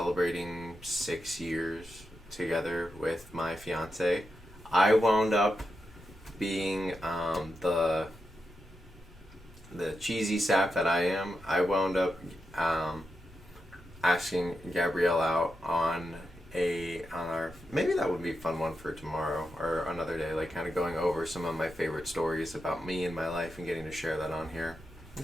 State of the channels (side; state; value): both; normal; correlation 0.88